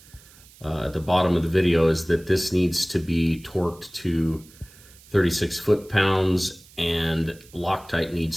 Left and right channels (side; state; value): right; noise; hiss, 24 dB below the sound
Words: at the bottom of the video, is that this needs to be torqued to 36 foot-pounds, and Loctite